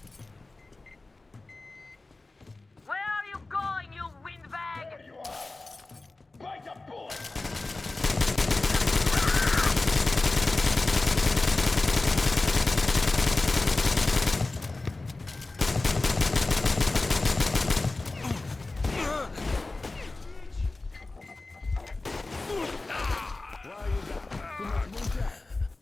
Where are you going, you windbag? There you are! Bite the bullet!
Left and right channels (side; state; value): right; quieter; 3.2 dB